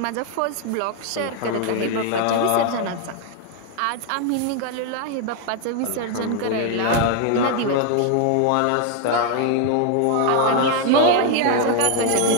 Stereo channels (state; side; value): different; both; correlation 0.00